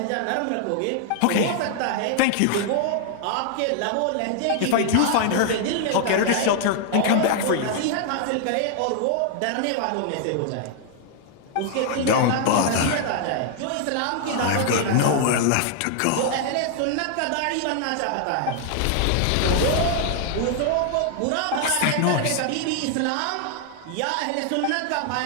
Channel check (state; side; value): different; both; correlation 0.00